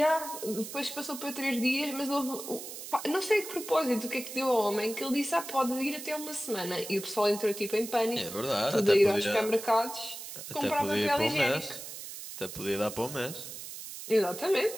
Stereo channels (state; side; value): noise; right; hiss, 10 dB below the sound